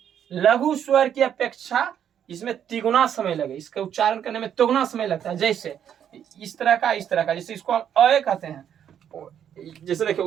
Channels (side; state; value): left; quieter; 9.2 dB